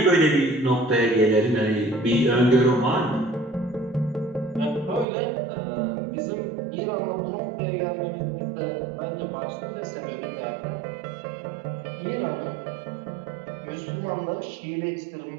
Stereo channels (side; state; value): left; drops out; at 5.1 s